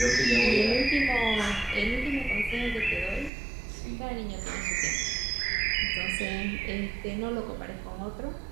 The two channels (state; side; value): drops out; left; at 3.3 s